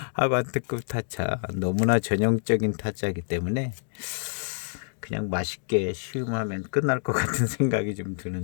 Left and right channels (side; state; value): right; silent; digital silence